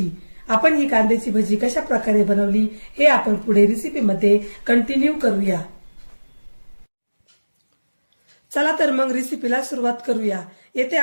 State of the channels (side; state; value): both; inverted; correlation -1.00